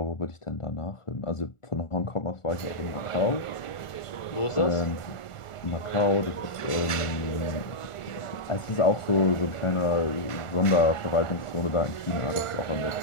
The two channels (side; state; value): right; late; 1.4 ms